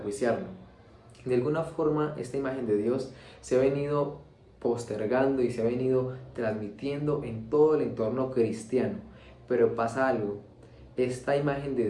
De alguna forma esta imagen de Dios se ha venido postergando y se ha venido transmitiendo en todo el entorno cristiano. Pero pasa algo, esta imagen de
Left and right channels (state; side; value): identical; both; correlation 1.00